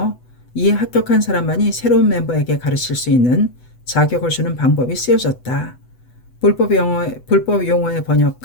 이에 합격한 사람만이 새로운 멤버에게 가르칠 수 있는 자격을 주는 방법이 쓰여졌다. 불법 용어의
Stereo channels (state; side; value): late; right; 8.0 ms